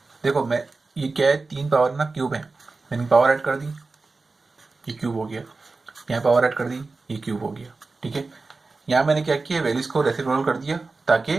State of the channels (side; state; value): left; quieter; 3.8 dB